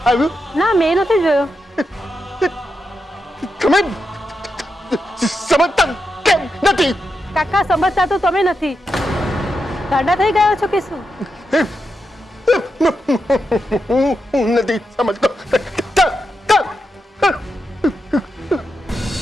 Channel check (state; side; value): normal; both; correlation 0.86